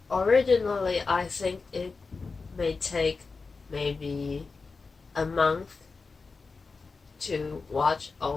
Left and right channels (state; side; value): quieter; right; 4.4 dB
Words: originally I think it may take maybe a month to watch